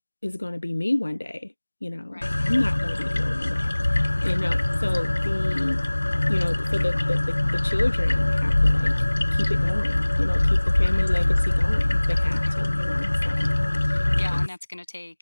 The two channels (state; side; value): inverted; both; correlation -1.00